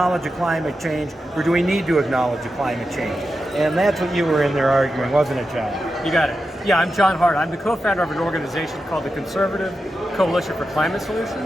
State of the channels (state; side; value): normal; both; correlation 0.89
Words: a climate change, or do we need to acknowledge a climate change? And that's what you were in there arguing, wasn't it, John? You got it. Yeah, I'm John Hart. I'm the co-founder of an organization called the Conservative Coalition for Climate